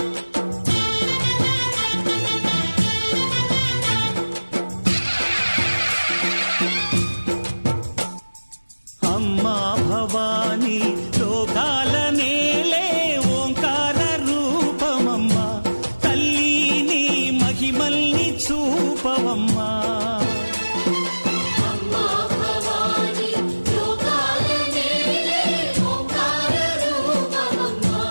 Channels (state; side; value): inverted; both; correlation -1.00